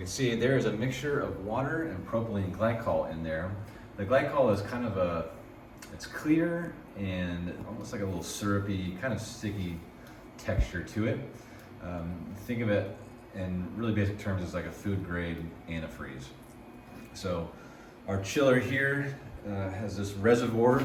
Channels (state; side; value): identical; both; correlation 1.00